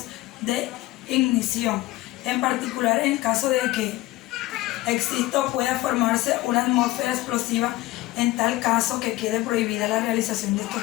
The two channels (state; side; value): quieter; right; 18.0 dB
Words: de ignición, en particular en el caso de que exista o pueda formarse una atmósfera explosiva. En tal caso que quede prohibida la realización de